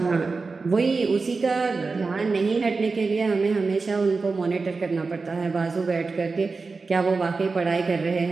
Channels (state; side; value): quieter; left; 4.2 dB